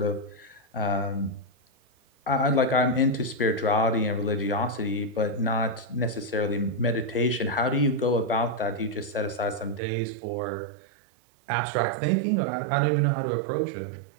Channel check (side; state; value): left; drops out; at 9.8 s